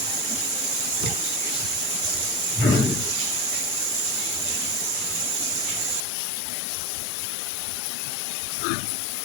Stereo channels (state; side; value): drops out; right; at 6.1 s